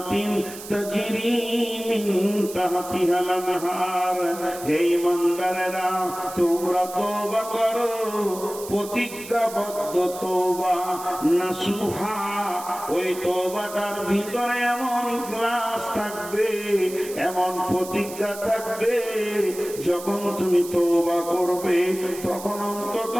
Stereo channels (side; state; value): right; noise; hiss, 13 dB below the sound